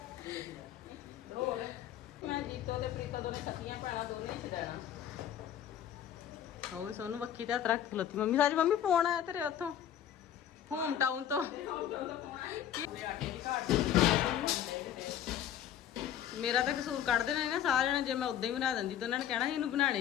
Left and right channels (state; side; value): quieter; right; 10.3 dB